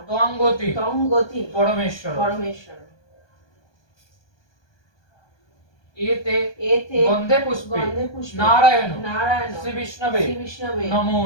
ত্বঙ্গতি তং গতি পরমেশ্বর। পরমেশ্বর। এতে এতে গন্ধে পুষ্পে গন্ধে পুষ্পে নারায়ণ নারায়ণ শ্রী বিষ্ণবে শ্রী বিষ্ণবে নমো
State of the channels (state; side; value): late; right; 1.2 ms